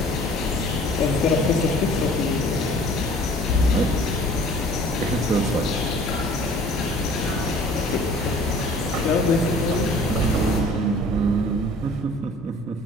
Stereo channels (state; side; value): normal; both; correlation 0.50